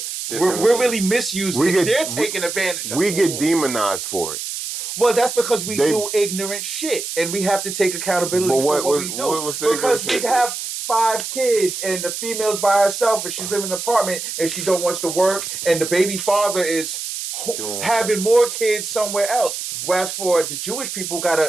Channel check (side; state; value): right; noise; hiss, 6 dB below the sound